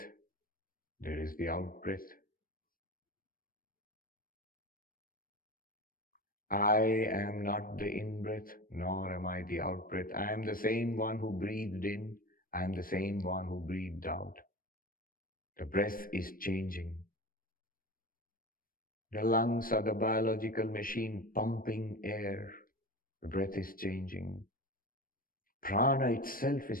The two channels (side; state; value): right; late; 0.41 ms